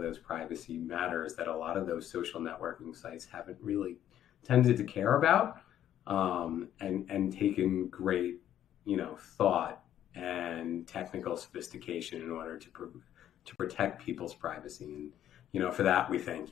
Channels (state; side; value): quieter; right; 11.2 dB